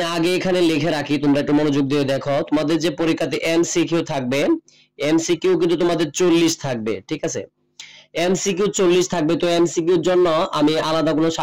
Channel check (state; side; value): identical; both; correlation 1.00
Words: আগে এখানে লিখে রাখি, তোমরা একটু মনোযোগ দিয়ে দেখো। তোমাদের যে পরীক্ষাতে এমসিকিউ থাকবে, এমসিকিউ কিন্তু তোমাদের 40 থাকবে, ঠিক আছে? এমসিকিউ 40 থাকবে। তো এমসিকিউর জন্য আমি আলাদা কোনো